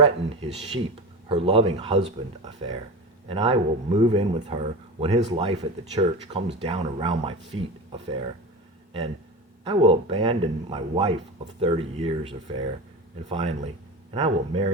his sheep, her loving husband affair. And I will move in with her when his life at the church comes down around my feet affair. And I will abandon my wife of 30 years affair. And finally, and I will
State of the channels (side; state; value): both; normal; correlation 0.26